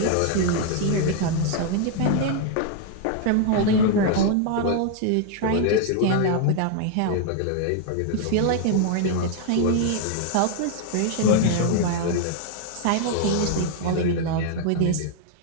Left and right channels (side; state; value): both; different; correlation 0.00